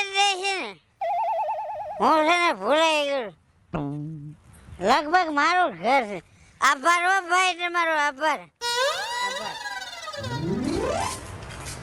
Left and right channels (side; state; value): both; identical; correlation 1.00